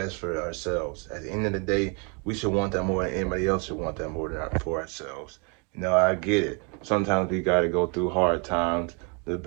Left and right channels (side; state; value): left; quieter; 34.2 dB